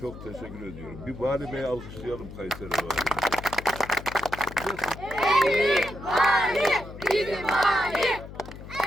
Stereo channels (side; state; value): left; noise; hum, 13 dB below the sound